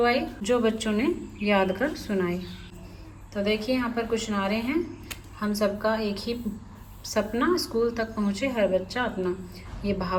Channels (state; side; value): identical; both; correlation 1.00